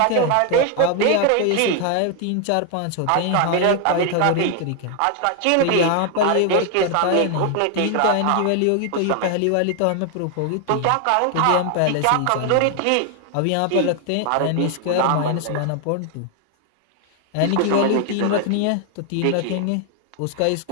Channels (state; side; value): different; both; correlation 0.00